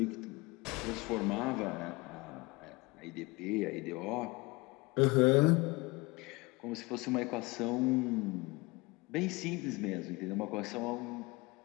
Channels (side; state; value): right; quieter; 24.6 dB